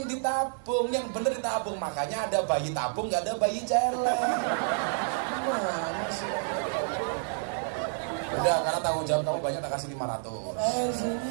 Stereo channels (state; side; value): silent; left; 58 dB below the other